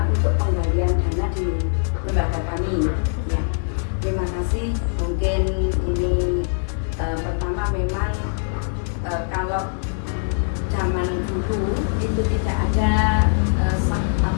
untuk penggalian dana di lembaga kami. Ya, terima kasih. Mungkin ini pertama memang kalau zaman dulu itu tidak ada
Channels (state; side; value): silent; right; 57 dB below the other